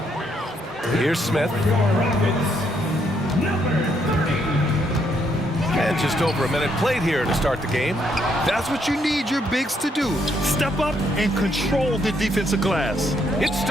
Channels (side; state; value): both; normal; correlation 0.74